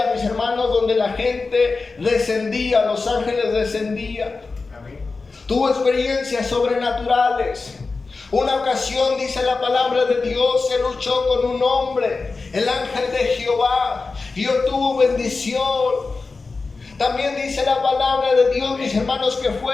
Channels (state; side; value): quieter; right; 4.1 dB